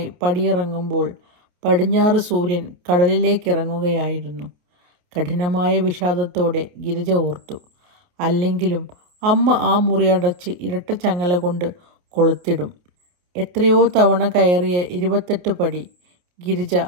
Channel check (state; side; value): late; left; 28 ms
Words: പടിയിറങ്ങുമ്പോൾ പടിഞ്ഞാറ് സൂര്യൻ കടലിലേക്കിറങ്ങുകയായിരുന്നു. കഠിനമായ വിഷാദത്തോടെ ഗിരിജ ഓർത്തു, അല്ലെങ്കിലും അമ്മ ആ മുറി അടച്ച് ഇരട്ട ചങ്ങല കൊണ്ട് കൊളുത്തിടും. എത്രയോ തവണ കയറിയ 28 പടി. ഗിരിജ